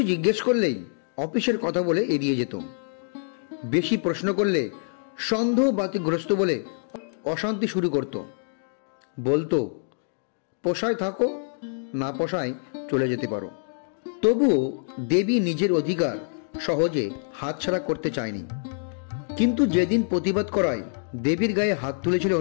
জিজ্ঞেস করলেই অফিসের কথা বলে এড়িয়ে যেত। বেশি প্রশ্ন করলে সন্দেহ বাতিগ্রস্ত বলে অশান্তি শুরু করত। বলতো, পোষায় থাকো, না পোষায় চলে যেতে পারো। তবুও দেবী নিজের অধিকার সহজে হাতছাড়া করতে চায়নি। কিন্তু যেদিন প্রতিবাদ করায় দেবীর গায়ে হাত তুলেছিল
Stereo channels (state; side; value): silent; right; digital silence